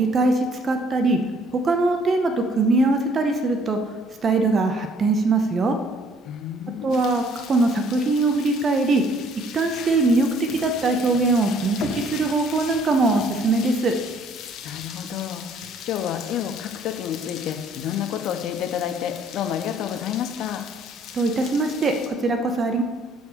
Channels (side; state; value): both; normal; correlation 0.60